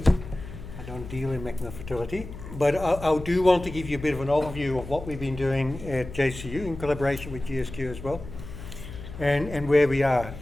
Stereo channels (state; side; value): noise; left; hum, 12 dB below the sound